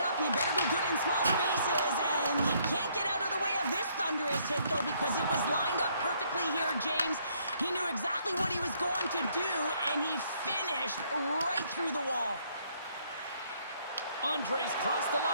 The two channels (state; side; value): inverted; both; correlation -0.67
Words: up. You better be good in small spaces, and you can't get out of the way of this thunderous hit, though, because it was lined up perfectly here, James. He knew exactly what he was going to do, and he finished dished right through the wall. Andres crossed the